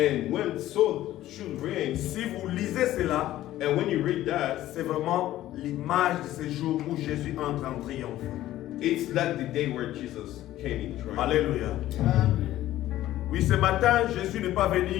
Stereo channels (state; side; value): quieter; right; 14.3 dB